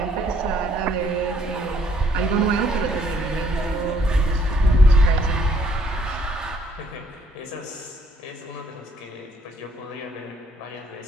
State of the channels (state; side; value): normal; both; correlation 0.65